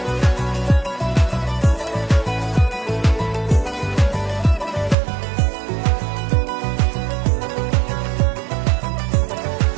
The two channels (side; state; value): left; drops out; at 5.0 s